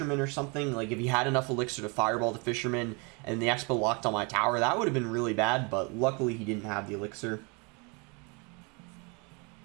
or something, like if he had enough Elixir to Fireball the Fisherman and the Expo locked on my tower, that would have been really bad, but luckily he didn't have the Elixir.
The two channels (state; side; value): quieter; left; 31.6 dB